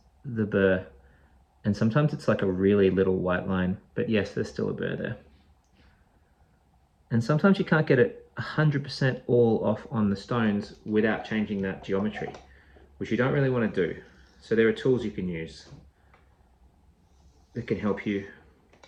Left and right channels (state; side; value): identical; both; correlation 1.00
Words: the burr. And sometimes it's like a really little white line, but yes, there's still a burr there. And sometimes you can't get it 100% all off on the stones without changing that geometry, which you don't really want to do. So there are tools you can use that can help you